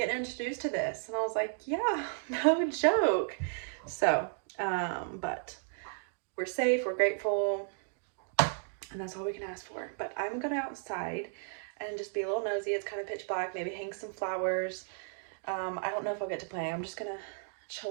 introduced to this. And I was like, yeah, no joke. So but we're safe, we're grateful, and that's all we can ask for. But I'm gonna outside and just be a little nosy. It's kind of pitch black, maybe hang some flowers. I don't know if I'll get to play. I'm just gonna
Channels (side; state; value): left; silent; digital silence